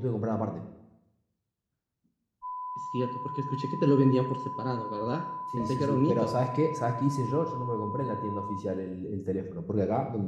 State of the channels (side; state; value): both; identical; correlation 1.00